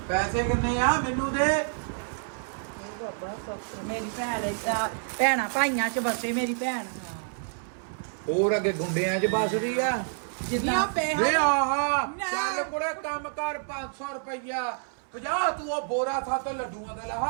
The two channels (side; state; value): left; silent; 59 dB below the other